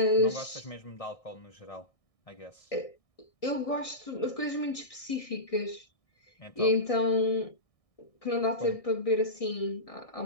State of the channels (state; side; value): late; right; 1.6 ms